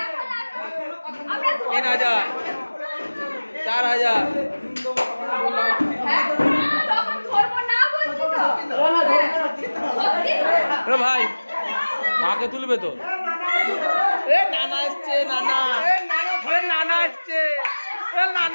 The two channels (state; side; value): inverted; both; correlation -1.00